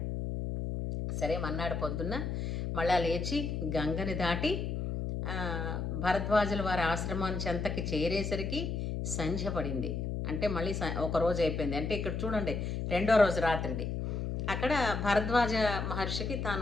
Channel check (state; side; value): noise; left; hum, 2 dB below the sound